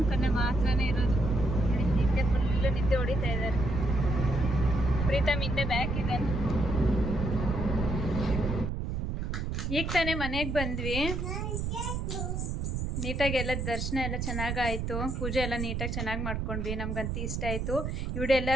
ಕಣ್ಣೆ ಮಾತ್ರನೇ ಇರೋದು. ನಿದ್ದೆ ಫುಲ್ ನಿದ್ದೆ ಹೊಡಿತಾ ಇದ್ದಾರೆ. ಪ್ರೀತಮ್ ಹಿಂದೆ ಬ್ಯಾಕ್ ಇದ್ದಾನೆ. ಈಗ ತಾನೇ ಮನೆಗೆ ಬಂದ್ವಿ. ನೀಟಾಗಿ ಎಲ್ಲ ದರ್ಶನ ಎಲ್ಲ ಚೆನ್ನಾಗಾಯಿತು, ಪೂಜೆ ಎಲ್ಲ ನೀಟಾಗಿ ಚೆನ್ನಾಗಿ ಮಾಡ್ಕೊಂಡ್ವಿ. ನಮ್ಗಂತೂ ಇಷ್ಟ ಆಯಿತು. ಈ ವಿಡಿಯೋ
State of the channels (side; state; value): right; noise; rumble, 2 dB below the sound